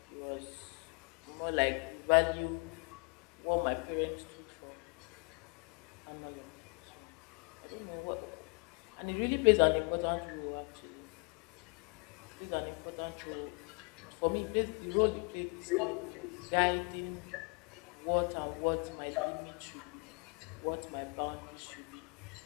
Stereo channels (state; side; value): quieter; right; 35.2 dB